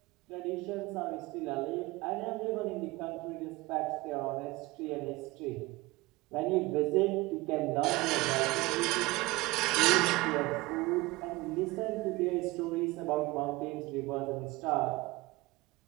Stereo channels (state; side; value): quieter; left; 21.5 dB